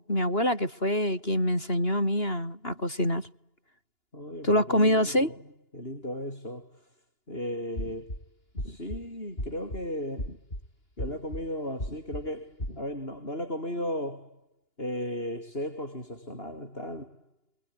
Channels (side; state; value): right; late; 2.9 ms